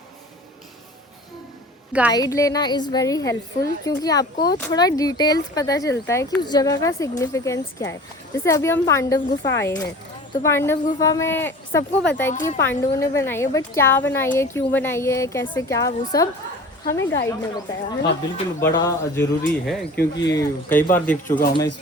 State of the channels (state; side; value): normal; both; correlation 0.41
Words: गाइड लेना इज़ वेरी हेल्पफुल, क्योंकि आपको थोड़ा डिटेल्स पता चलता है कि उस जगह का सिग्निफिकेंस क्या है। जैसे अभी हम पांडव गुफा आए हैं, तो पांडव गुफा में सबको पता है कि ये पांडवों ने बनाई है, बट क्या बनाई है, क्यों बनाई है, कैसे क्या, वो सब हमें गाइड ने बताया है। हाँ बिल्कुल, बड़ा ज़रूरी है, क्योंकि कई बार देख चुका हूँ मैं इस